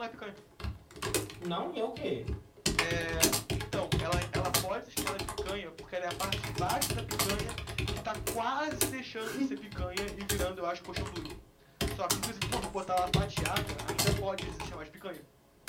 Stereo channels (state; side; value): identical; both; correlation 1.00